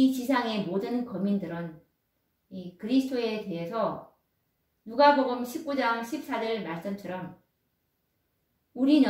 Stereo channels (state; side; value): identical; both; correlation 1.00